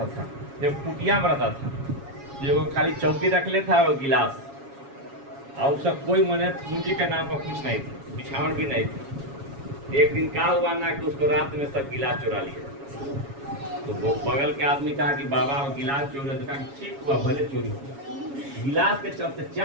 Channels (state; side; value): late; left; 7.2 ms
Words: था, जब कुटिया में रहता था जो खाली चौकी रख लेता और गिलास और उसका कोई मने पूंजी के नाम पर कुछ नहीं था, बिछावन भी नहीं था। एक दिन क्या हुआ ना कि उसको रात में सब गिलास चुरा लिया। तो वो बगल के आदमी कहा कि बाबा वो गिलास चोरी, तो कहा ठीक हुआ भले चोरी हुआ। गिलास के चलते